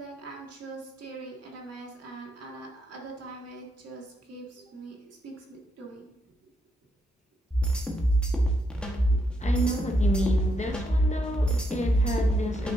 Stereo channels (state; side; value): normal; both; correlation 0.79